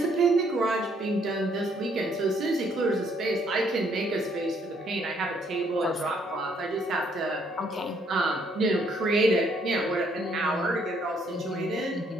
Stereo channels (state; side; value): normal; both; correlation 0.68